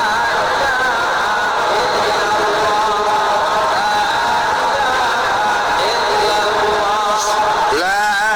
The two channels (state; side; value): identical; both; correlation 1.00